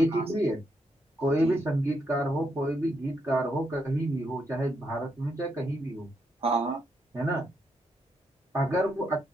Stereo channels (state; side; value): normal; both; correlation 0.79